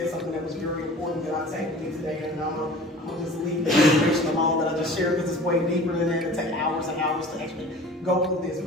something that was very important that I take with me today, and I'm gonna just leave the information alone that I just shared because it's way deeper than that. It take hours and hours to actually go through this.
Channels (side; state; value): both; normal; correlation 0.43